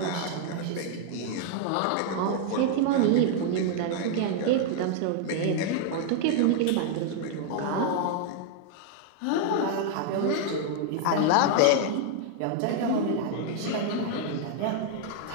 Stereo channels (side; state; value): both; different; correlation 0.00